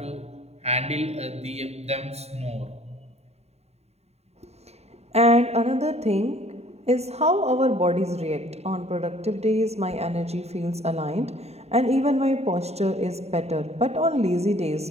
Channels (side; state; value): left; late; 0.31 ms